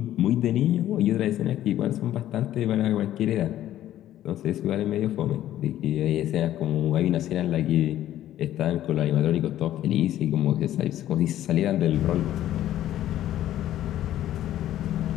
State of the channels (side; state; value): right; quieter; 12.7 dB